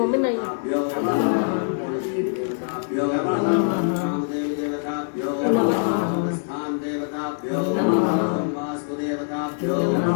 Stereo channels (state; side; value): silent; right; digital silence